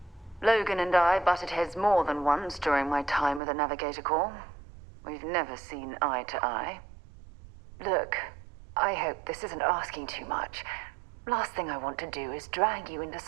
Logan and I butted heads more than once during my time with the Navigator Corps. We've never seen eye to eye. Look, I hope this isn't asking too much. Last thing I want to do is drag you into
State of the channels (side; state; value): left; drops out; at 3.4 s